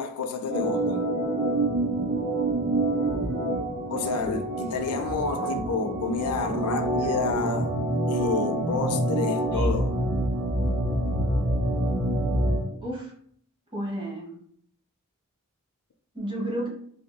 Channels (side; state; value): both; normal; correlation 0.38